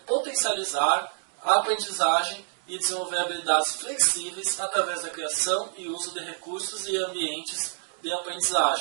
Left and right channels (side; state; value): left; silent; digital silence